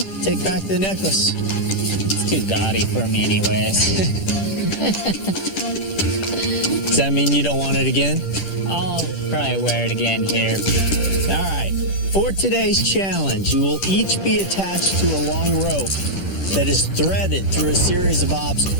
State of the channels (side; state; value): right; late; 10 ms